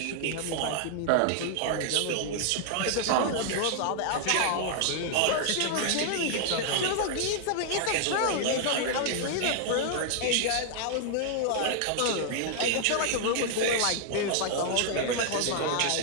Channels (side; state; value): both; different; correlation 0.00